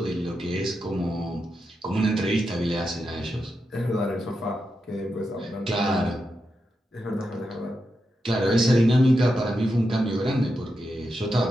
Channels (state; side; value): normal; both; correlation 0.87